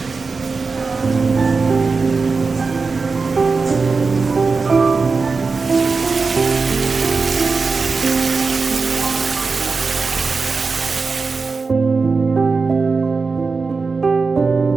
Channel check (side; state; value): left; quieter; 4.4 dB